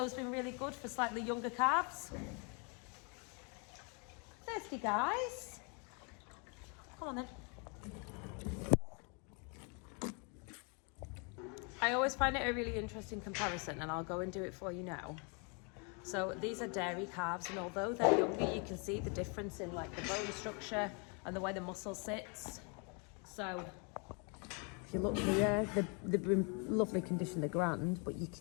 been really good for slightly younger calves. Thirsty guys. Come on then. I always find it a really interesting comparison, and I'll go and do it for you now. So these are dairy calves, and although they're younger, you can see the difference in like the bone structure and the way the muscle sits. So if you look here, they've been lovely condition, they're grand, but you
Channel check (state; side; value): quieter; right; 35.5 dB